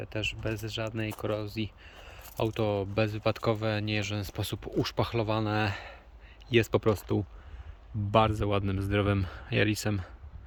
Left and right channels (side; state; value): both; identical; correlation 1.00